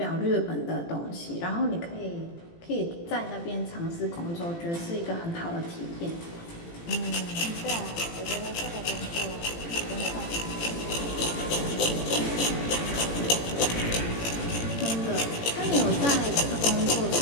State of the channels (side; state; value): right; late; 18 ms